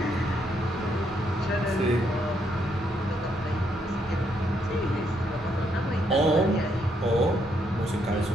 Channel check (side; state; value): both; normal; correlation 0.75